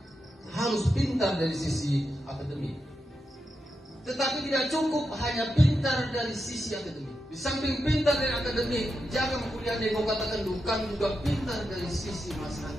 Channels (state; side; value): normal; both; correlation 0.87